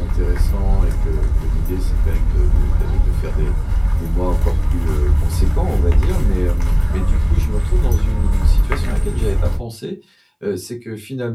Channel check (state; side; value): identical; both; correlation 1.00